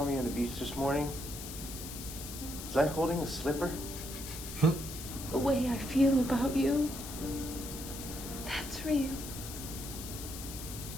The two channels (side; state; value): left; noise; hiss, 10 dB below the sound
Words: me on the beach this morning, was I holding a slipper? The way I feel about you, that's real.